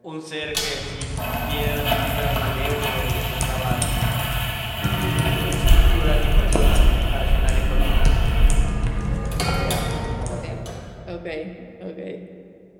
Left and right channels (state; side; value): identical; both; correlation 1.00